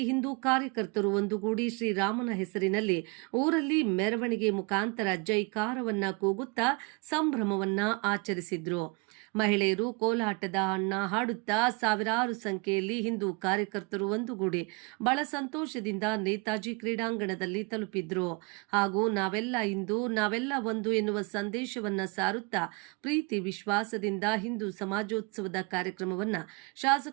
ಹಿಂದೂ ಕಾರ್ಯಕರ್ತರು ಒಂದುಗೂಡಿ ಶ್ರೀರಾಮನ ಹೆಸರಿನಲ್ಲಿ ಊರಲ್ಲಿ ಮೆರವಣಿಗೆ ಮುಖಾಂತರ ಜೈಕಾರವನ್ನ ಕೂಗುತ್ತಾ ಸಂಭ್ರಮವನ್ನ ಆಚರಿಸಿದ್ರು. ಮಹಿಳೆಯರು ಕೋಲಾಟದ ಹಾಡುತ್ತಾ ಸಾವಿರಾರು ಸಂಖ್ಯೆಯಲ್ಲಿ ಹಿಂದೂ ಕಾರ್ಯಕರ್ತರು ಒಂದುಗೂಡಿ ಬಹಳ ಸಂತೋಷದಿಂದ ನೇತಾಜಿ ಕ್ರೀಡಾಂಗಣದಲ್ಲಿ ತಲುಪಿದ್ರು. ಹಾಗೂ ನಾವೆಲ್ಲ ಹಿಂದೂ, ನಾವೆಲ್ಲ ಒಂದು ಎನ್ನುವ ಸಂದೇಶವನ್ನ ಸಾರುತ್ತಾ ಪ್ರೀತಿ ವಿಶ್ವಾಸದಿಂದ ಹಿಂದೂ ಸಮಾಜೋತ್ಸವದ ಕಾರ್ಯಕ್ರಮವನ್ನ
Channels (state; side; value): quieter; left; 29.2 dB